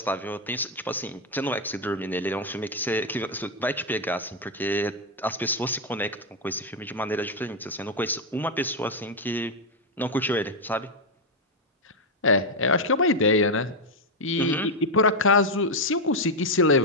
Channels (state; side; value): normal; both; correlation 0.03